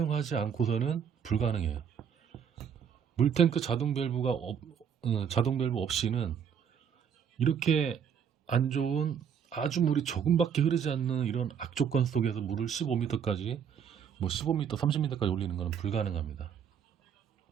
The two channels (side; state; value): left; quieter; 7.8 dB